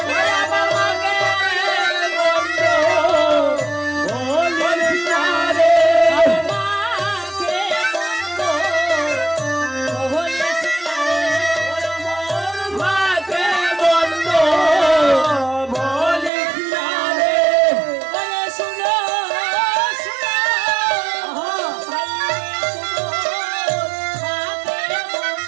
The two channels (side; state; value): left; drops out; at 16.3 s